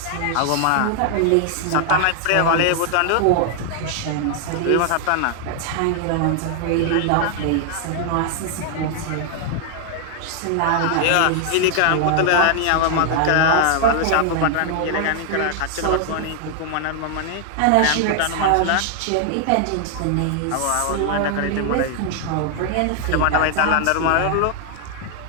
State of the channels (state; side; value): different; both; correlation 0.00